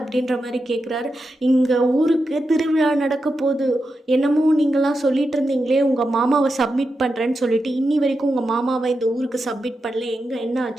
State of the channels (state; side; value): normal; both; correlation 0.88